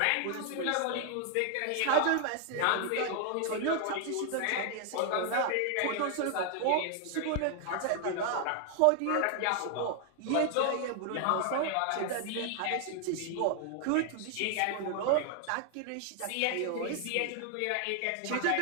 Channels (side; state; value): both; different; correlation 0.00